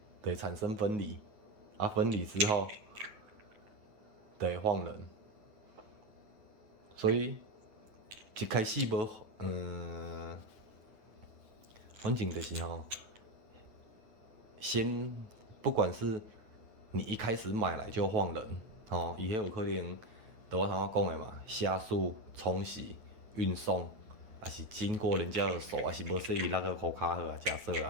就会产生分离，啊，分离之后，就会晃人。所以一开始无，反正就是先不管是你一开始买来就放人，伊迄有可能，就我头仔讲的嘛，下速、冲洗、运送，还是经过人家的手，还是无说伊那个护卡好啊，假设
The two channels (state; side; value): late; left; 9.2 ms